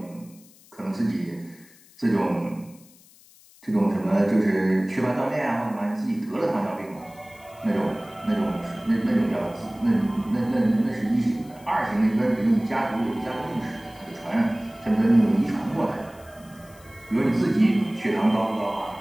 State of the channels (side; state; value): left; noise; hiss, 26 dB below the sound